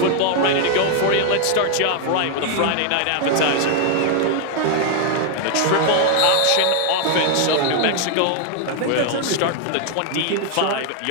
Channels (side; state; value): both; different; correlation 0.00